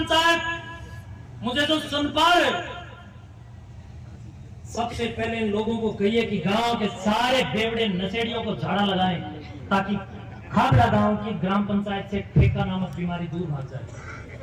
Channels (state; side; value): identical; both; correlation 1.00